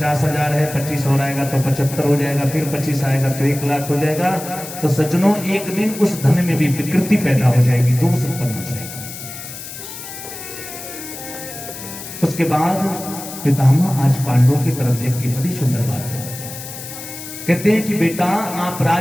है, 25 और आएगा तो 75 हो जाएगा, फिर 25 आएगा तो 1 लाख हो जाएगा। तो सज्जनों, एक दिन उस धन में भी विकृति पैदा हो जाएगी, दोष उत्पन्न हो जाएगा। उसके बाद पितामह आज पांडवों की तरफ देख के बड़ी सुंदर बात है, कहते हैं कि बेटा, आप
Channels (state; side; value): noise; left; hiss, 11 dB below the sound